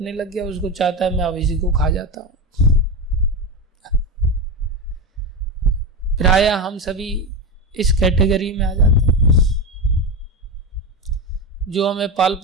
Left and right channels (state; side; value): normal; both; correlation 0.17